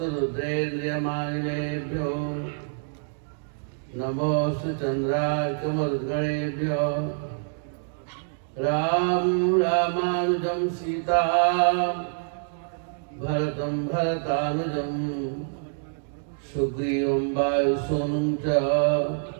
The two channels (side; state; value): left; silent; digital silence